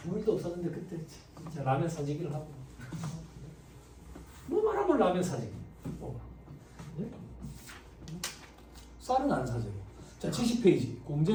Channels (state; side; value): identical; both; correlation 1.00